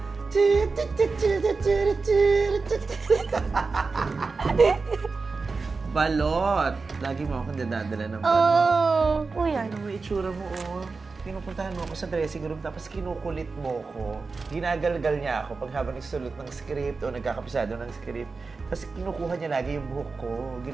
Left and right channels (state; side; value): quieter; left; 4.3 dB